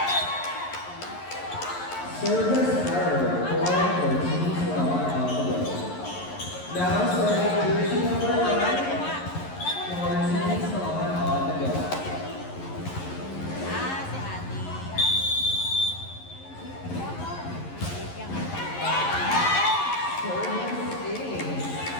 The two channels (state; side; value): late; right; 11 ms